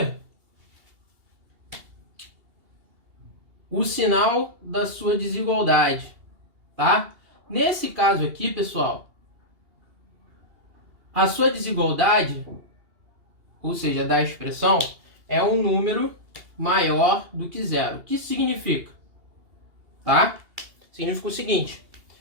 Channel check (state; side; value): late; left; 2.8 ms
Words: o sinal da sua desigualdade, tá? Nesse caso aqui, pessoal, a sua desigualdade, ou seja, da expressão, é um número maior do que zero. O que isso significa? Tá? Significa o seguinte,